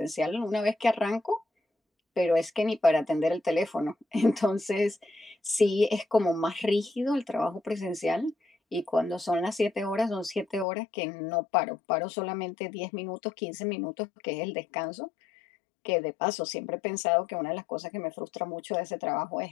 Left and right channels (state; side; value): drops out; right; at 10.7 s